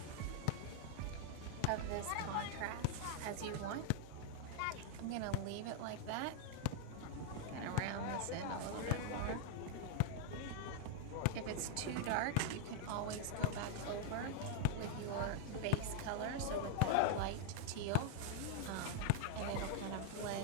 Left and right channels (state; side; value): different; both; correlation 0.01